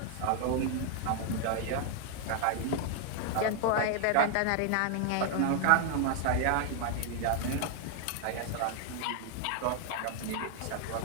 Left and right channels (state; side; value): different; both; correlation 0.00